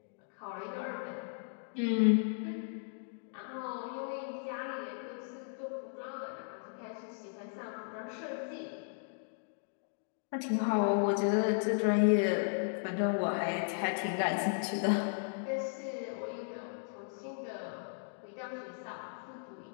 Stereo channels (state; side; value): silent; right; digital silence